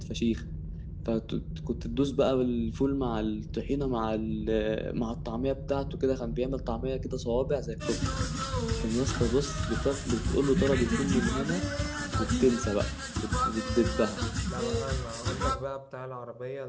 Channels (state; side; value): identical; both; correlation 1.00